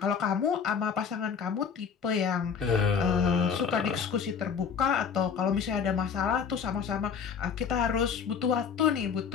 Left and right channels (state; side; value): quieter; right; 6.7 dB